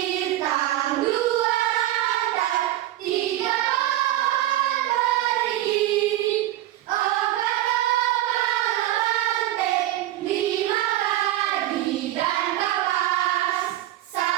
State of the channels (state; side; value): quieter; left; 14.5 dB